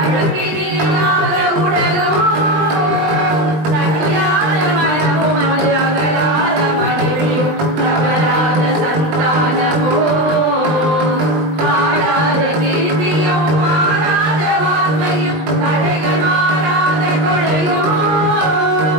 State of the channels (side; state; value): left; late; 20 ms